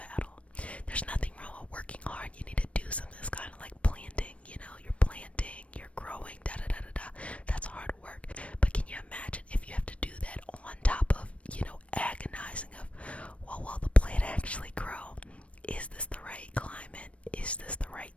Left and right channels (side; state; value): right; late; 0.063 ms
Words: There's nothing wrong with working hard. You need to do something. That's kind of like planting. You know, you're planting, you're growing, da da da da da. That's hard work. But can you imagine if you have to do that on top of, you know, agonizing of, well, will the plant actually grow? Is this the right climate? Is this